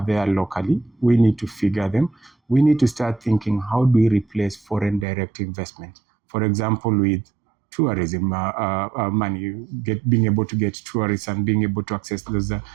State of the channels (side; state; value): left; drops out; at 5.1 s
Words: there locally. We need to figure them. We need to start thinking, how do we replace foreign direct investment? For example, with tourism money, being able to get tourists and being able to access